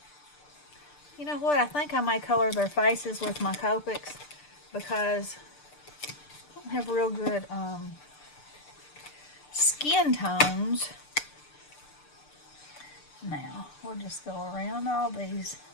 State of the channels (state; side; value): late; right; 6.8 ms